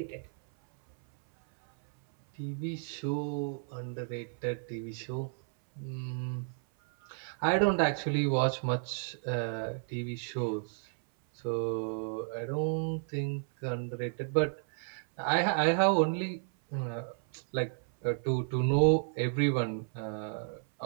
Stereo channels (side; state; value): left; silent; 56 dB below the other